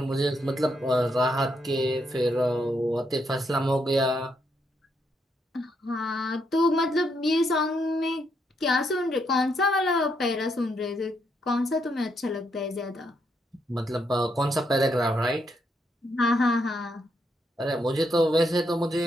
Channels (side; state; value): both; normal; correlation 0.77